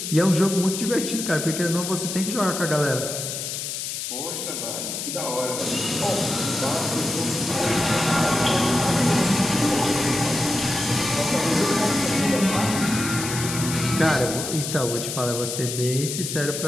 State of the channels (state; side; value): noise; left; hiss, 5 dB below the sound